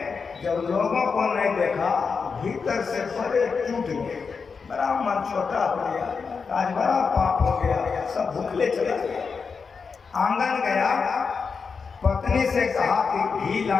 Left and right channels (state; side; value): quieter; right; 5.3 dB